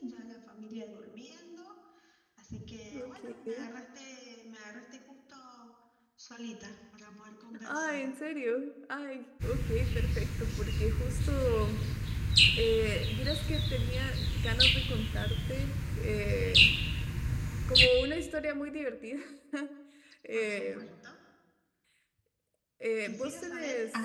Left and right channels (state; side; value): identical; both; correlation 1.00